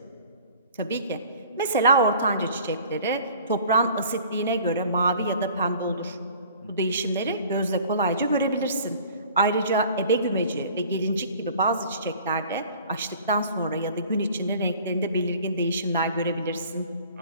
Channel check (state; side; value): inverted; both; correlation -0.49